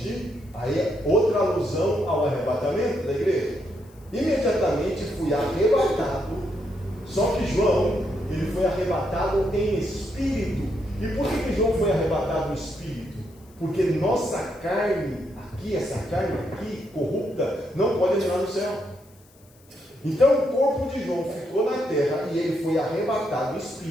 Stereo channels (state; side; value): noise; left; hiss, 29 dB below the sound